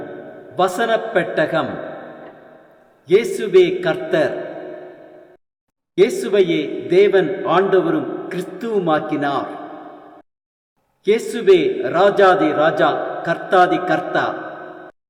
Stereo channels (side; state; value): both; identical; correlation 1.00